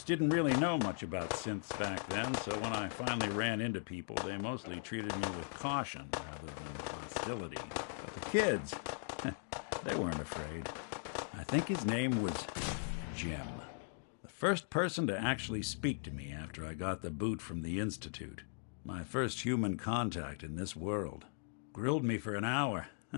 didn't really know much about synths back then, so when I finally ran into people, they mostly treated me with caution rather than hostility. But the kids, they weren't afraid. I think his name was Jim. The first person to actually speak to me after I got the boot from the Institute. My first human contact in this world. Grilled me for an hour.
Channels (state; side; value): silent; right; digital silence